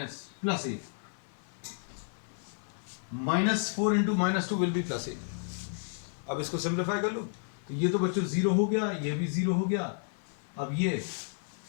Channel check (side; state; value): right; silent; 57 dB below the other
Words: -4 into -2 will be +8। अब इसको सिंप्लीफाई कर लो तो ये तो बच्चों 0 हो गया, ये भी 0 हो गया। अब ये